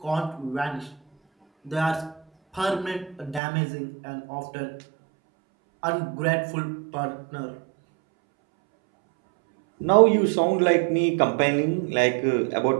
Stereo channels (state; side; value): drops out; left; at 3.4 s